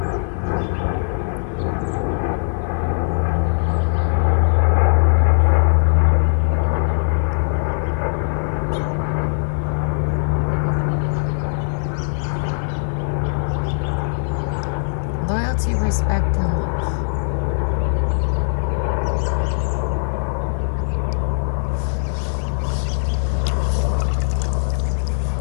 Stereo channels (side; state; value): right; silent; digital silence